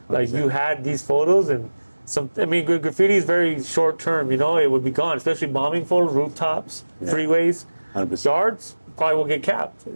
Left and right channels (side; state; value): both; inverted; correlation -1.00